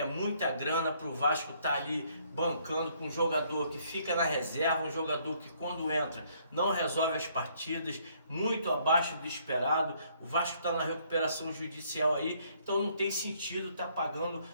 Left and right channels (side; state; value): both; inverted; correlation -0.66